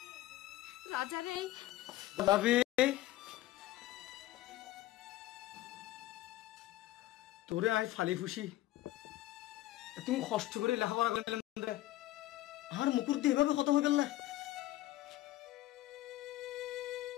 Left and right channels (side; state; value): right; quieter; 15.8 dB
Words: রাজারে। বাবি তোরে আই ফালি ফুসি তুমি কষ্ট করে লেখাপড়া করলাম আর মুকুর দিয়ে এভাবে কত হয়ে গেল না।